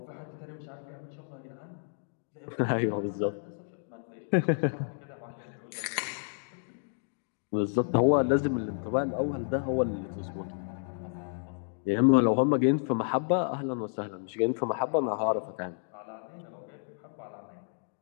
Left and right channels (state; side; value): silent; right; digital silence